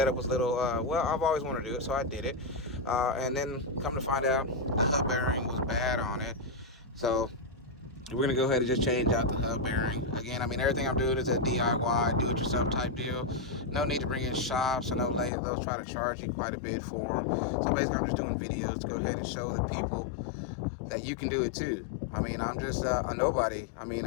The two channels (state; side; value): drops out; right; at 15.3 s